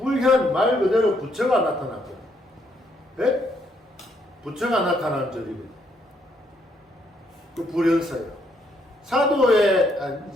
말 그대로 부처가 나타났거든요. 예? 부처가 나타나는 절이거든요. 그 불현사예요. 사도의,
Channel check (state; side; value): normal; both; correlation 0.72